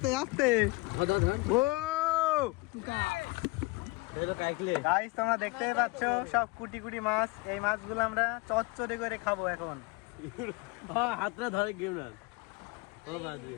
আস্তে ও গাইস, তোমরা দেখতেই পাচ্ছ সব কুটি কুটি মাছ। এই মাছগুলো আমরা চচ্চড়ি করে খাবো এখন। হাতটা ধরে গেম না।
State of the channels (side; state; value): right; quieter; 25.0 dB